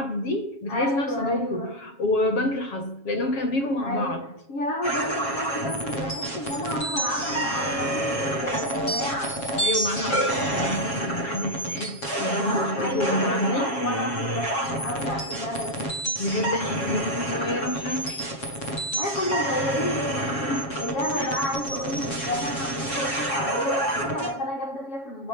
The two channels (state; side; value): late; right; 7.3 ms